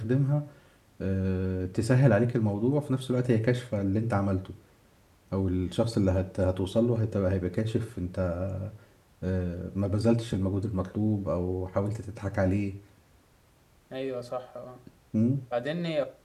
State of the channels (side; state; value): both; identical; correlation 1.00